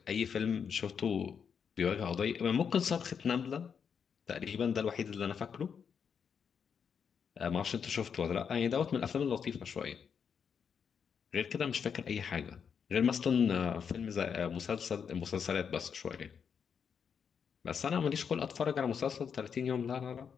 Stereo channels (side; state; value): right; quieter; 6.9 dB